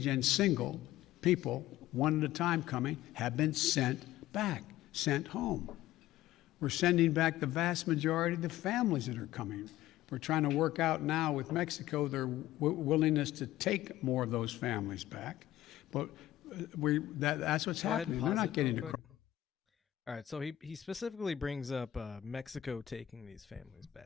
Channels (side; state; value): right; quieter; 14.1 dB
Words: and single people, one at a time coming, have been sent back, sent home. We're sending back the vast majority of the families that are coming. We're trying to work out now with Mexico their willingness to take more of those families back. But that's what's Go ahead and happening. We're pause not it getting real to quick. All right, so he specifically brings up Mexico taking these families